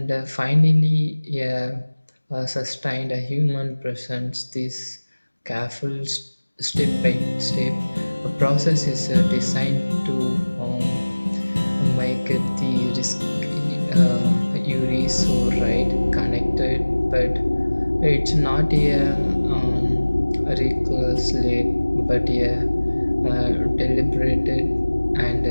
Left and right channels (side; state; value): both; inverted; correlation -1.00